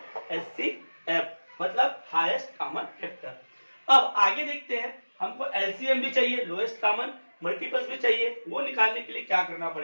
एचसीएफ, मतलब हाईएस्ट कॉमन फैक्टर। अब आगे देखते हैं, हमको एलसीएम भी चाहिए, लोएस्ट कॉमन मल्टीपल्स भी चाहिए। वो निकालने के लिए क्या करना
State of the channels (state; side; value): inverted; both; correlation -1.00